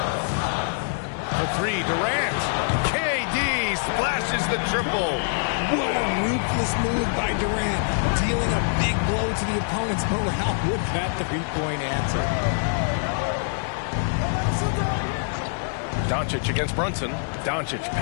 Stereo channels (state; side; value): silent; right; digital silence